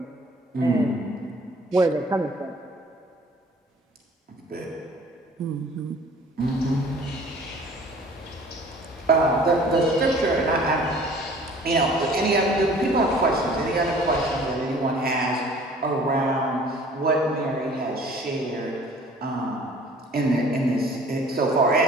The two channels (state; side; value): normal; both; correlation 0.51